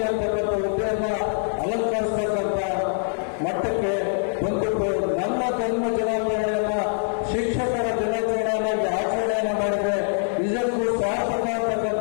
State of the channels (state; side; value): silent; right; 62 dB below the other